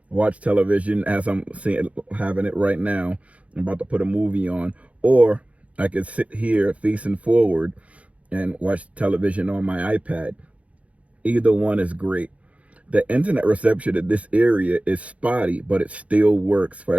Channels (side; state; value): left; late; 0.065 ms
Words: watch television as I'm having it right now. I'm about to put a movie on, or I could sit here facing forward and watch television on my iPad. Either one is great. The internet reception in this area is spotty, but it still works. For